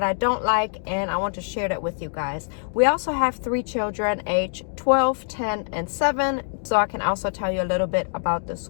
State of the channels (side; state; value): right; silent; digital silence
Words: I don't like, and I want to share that with you guys. We also have 3 children, age 12, 10, and 7, so I can also tell you a little bit about the